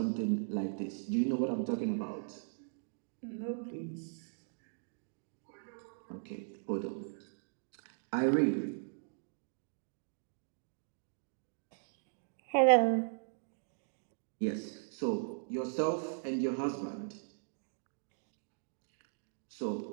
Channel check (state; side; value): silent; left; digital silence